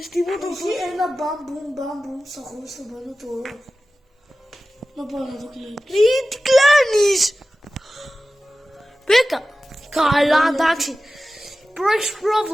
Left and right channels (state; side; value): normal; both; correlation 0.95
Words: τίποτα. Έχει ένα μπαμπούμ στα χωρίς το πάνω του όρου. Να πάω να το κλείνω. Τι κλάνεις. Μπήκα. Καλά, εντάξει. Έχεις